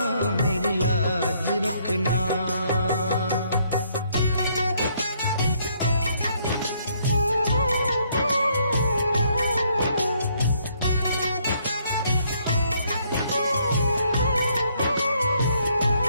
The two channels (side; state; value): both; inverted; correlation -0.69